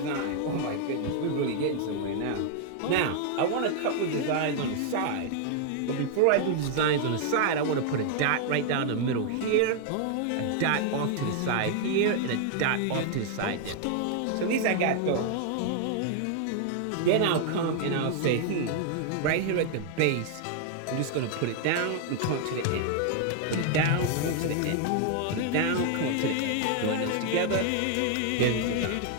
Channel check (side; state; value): both; different; correlation 0.00